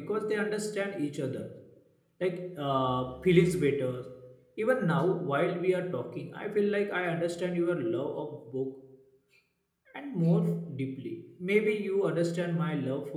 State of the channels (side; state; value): both; identical; correlation 1.00